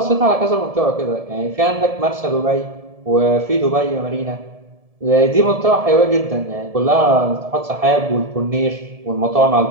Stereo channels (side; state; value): left; late; 1.7 ms